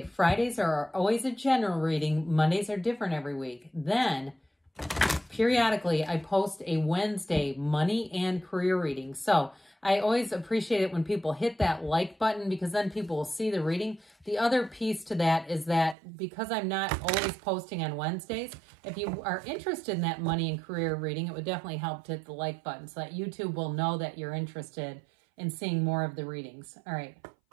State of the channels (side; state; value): left; drops out; at 16.0 s